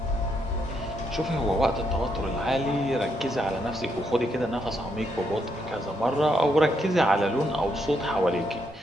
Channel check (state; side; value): normal; both; correlation 0.77